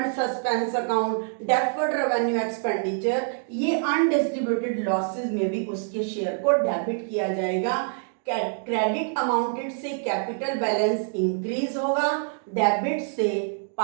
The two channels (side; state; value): left; silent; digital silence